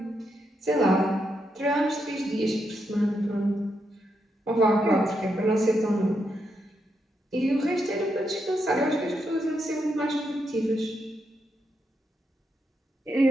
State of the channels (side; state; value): both; normal; correlation 0.82